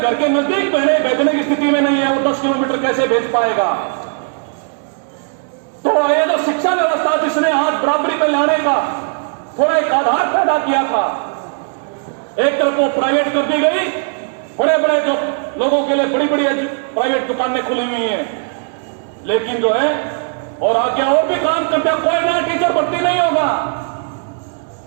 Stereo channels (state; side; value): silent; left; 57 dB below the other